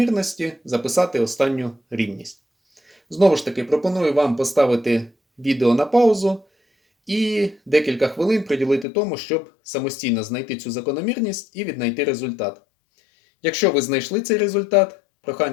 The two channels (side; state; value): right; drops out; at 8.8 s